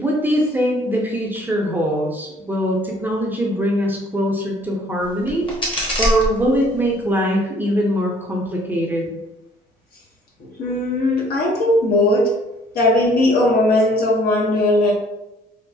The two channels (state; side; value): normal; both; correlation 0.58